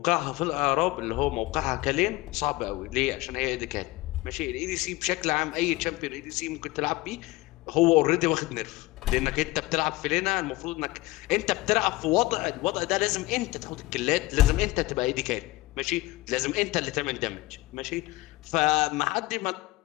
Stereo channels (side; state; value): right; quieter; 19.9 dB